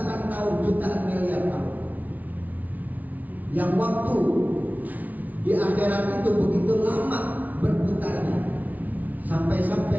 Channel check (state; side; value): late; left; 0.075 ms